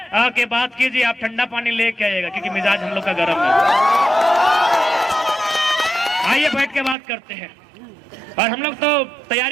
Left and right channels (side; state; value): left; drops out; at 7.0 s